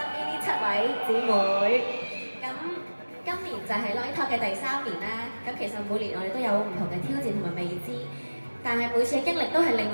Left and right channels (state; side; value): inverted; both; correlation -1.00